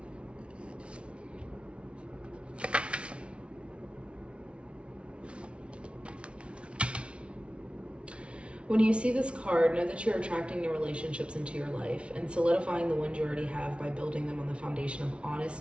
When you see this card, know that you're attracting new relationships into your life and solidifying the ones you already have by building them on the foundation of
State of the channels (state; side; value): late; left; 0.059 ms